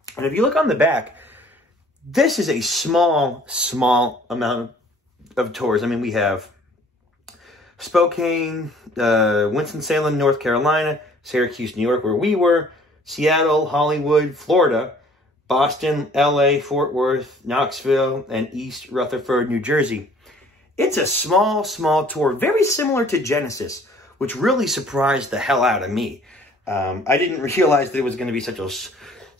And if you look on the back, this is a small amount of tours. I mean, we have Spokane, Winston-Salem, North Carolina, Syracuse, New York, where we were, Seattle, Hollywood, Florida, Boston, LA, Fort Worth, Knoxville, and East Rutherford, New Jersey. It's a small tour, very similar to Genesis, which really surprised the hell out of me. I didn't realize that it was going to be such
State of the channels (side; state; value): both; normal; correlation 0.55